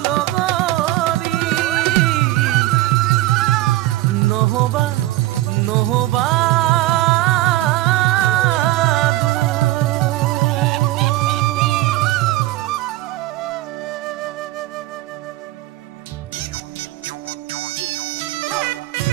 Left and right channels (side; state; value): left; quieter; 16.9 dB